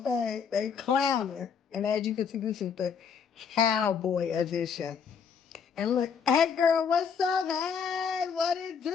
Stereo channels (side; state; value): right; quieter; 6.6 dB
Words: they clowning. And as you can see, this is the cowboy edition. And look, hey girl, what's up? Hey, what it